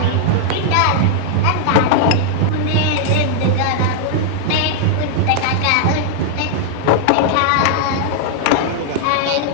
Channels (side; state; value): both; different; correlation -0.01